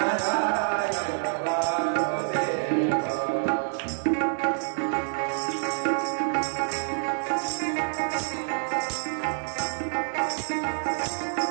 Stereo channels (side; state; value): left; silent; digital silence